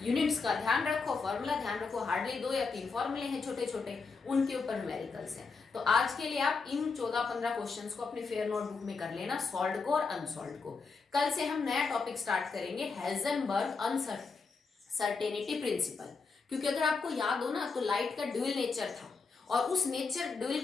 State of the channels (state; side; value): quieter; right; 4.6 dB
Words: यूनिट्स का ध्यान रखो, फॉर्मूला ध्यान रखो, हार्डली 2 या 3 फॉर्मूले हैं छोटे छोटे, उनके ऊपर न्यूमेरिकल्स हैं। तो आज के लिए आप इन 14-15 क्वेश्चंस को अपनी फेयर नोटबुक में कर लेना, सॉल्व को और अनसॉल्व को। कल से हम नया टॉपिक स्टार्ट करेंगे, हेजनबर्ग अनसर्टेनिटी प्रिंसिपल। क्योंकि अगर आपको याद हो ना, तो लाइट का ड्यूल नेचर था, और उस नेचर ड्यूल